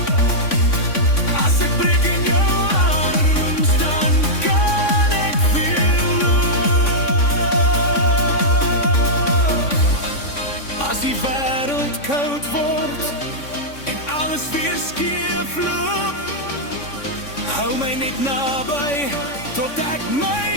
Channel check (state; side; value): late; right; 3.5 ms